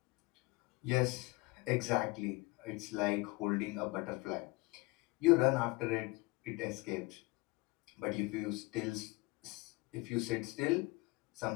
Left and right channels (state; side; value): quieter; right; 24.1 dB